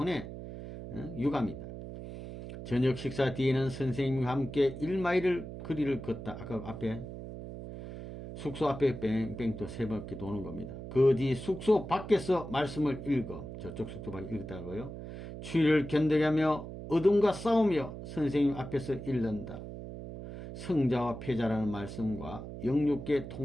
유감이다. 저녁 식사 뒤에는 선생님과 함께 1마일을 거리를 걷다. 아까 앞에 숙소 앞에 뺑뺑 또 3바퀴 도는 겁니다. 그 뒤 숙소 밖에서 말씀을 읽어. 저쪽 숙소 밖에 읽었다고요. 추위를 견뎌가며 어둠과 싸우며 선생님 앞에서 읽는다. 성자와 패자라는 말씀과 영육계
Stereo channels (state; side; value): noise; right; hum, 10 dB below the sound